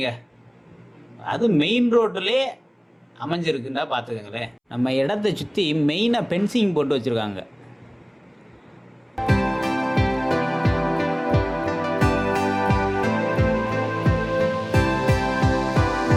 அது மெயின் ரோட்டிலே அமைஞ்சிருக்குன்னா பார்த்துக்கங்களேன். நம்ம இடத்தை சுற்றி மெயினாக பென்சிங் போட்டு வச்சுருக்காங்க.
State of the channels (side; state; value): both; identical; correlation 1.00